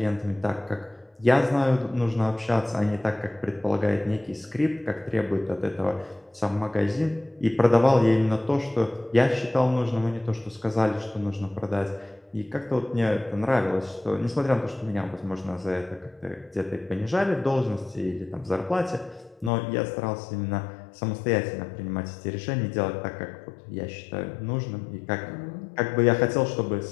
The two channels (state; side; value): drops out; right; at 19.5 s